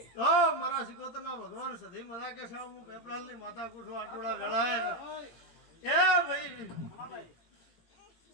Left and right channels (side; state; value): right; late; 17 ms